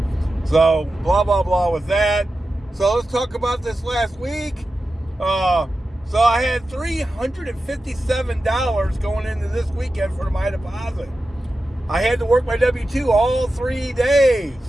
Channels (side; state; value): both; normal; correlation 0.92